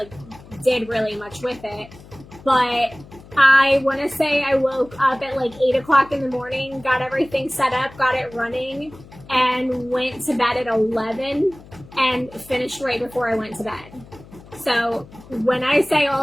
did really much with it. But I want to say I woke up at, like, 8 o'clock in the morning, got everything set up, got it running, and went to bed at 11 and finished right before I went to bed. So when I say all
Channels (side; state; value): left; noise; hum, 21 dB below the sound